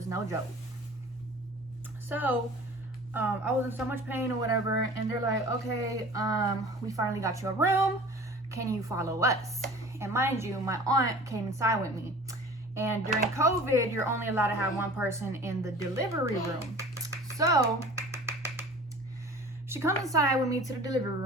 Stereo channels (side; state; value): both; normal; correlation 0.43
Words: no joke. So I was in so much pain or whatever, and they're like, okay, we finally got you a room, can you follow us? And mind you, my aunt came inside with me, and during COVID you're only allowed to have one person in the delivery room. So she comes inside with me to the delivery